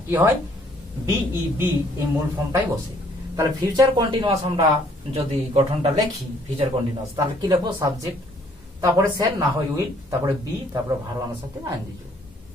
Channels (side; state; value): both; normal; correlation 0.62